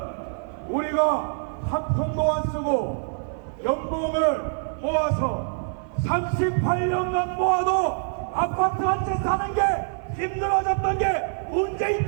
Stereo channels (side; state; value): left; silent; 59 dB below the other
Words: 우리가 한 푼도 안 쓰고 연봉을 모아서 38년간 모아도 아파트 한 채 사는 게 힘들어졌던 게 문재인